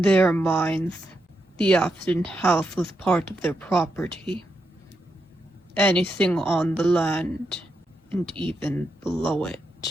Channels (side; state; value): both; normal; correlation 0.84